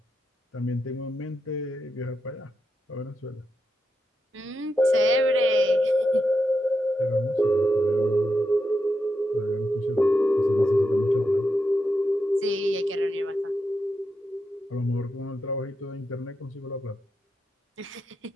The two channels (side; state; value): both; normal; correlation 0.85